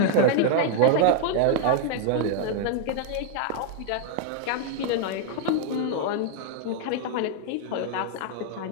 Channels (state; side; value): different; both; correlation 0.00